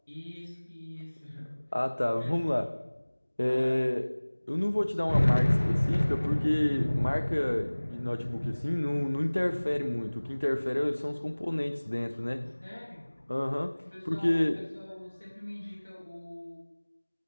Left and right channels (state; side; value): inverted; both; correlation -1.00